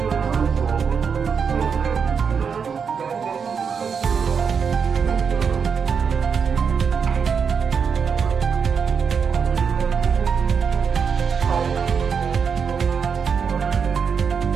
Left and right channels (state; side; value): quieter; left; 6.3 dB